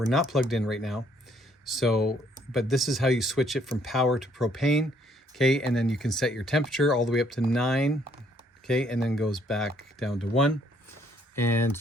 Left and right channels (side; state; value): both; normal; correlation 0.66